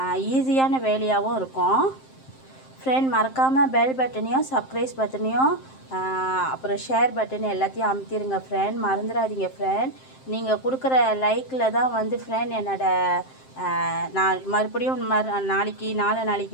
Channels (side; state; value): right; late; 7.6 ms